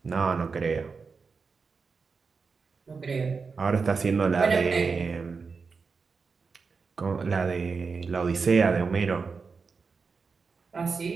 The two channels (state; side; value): quieter; left; 4.9 dB